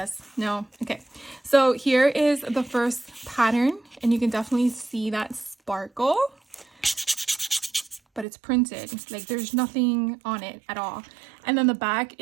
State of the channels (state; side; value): drops out; left; at 8.2 s